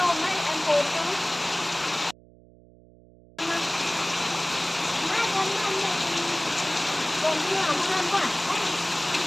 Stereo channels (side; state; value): right; noise; hum, 25 dB below the sound